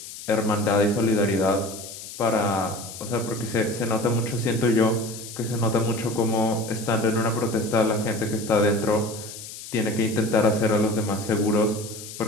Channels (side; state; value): left; noise; hiss, 12 dB below the sound